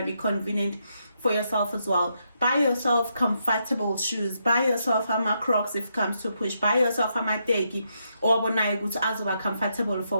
to be convenient for yourself as well. Buy yourself comfortable shoes, buy yourself a Crocs if it comes to push, buy yourself a teki or azoba comfortable for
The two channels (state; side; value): inverted; both; correlation -0.80